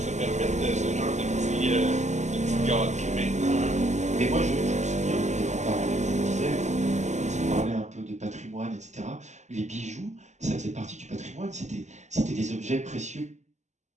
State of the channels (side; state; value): left; late; 0.34 ms